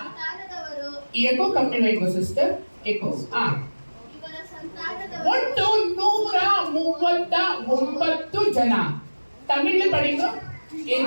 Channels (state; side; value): inverted; both; correlation -1.00